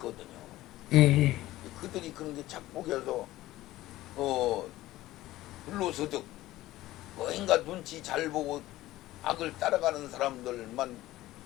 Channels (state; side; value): quieter; right; 16.3 dB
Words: 예. 그들이 그런 게 착복해서 불로소득 뭔가 눈치 잘 보고 악을 따라가는 사람들만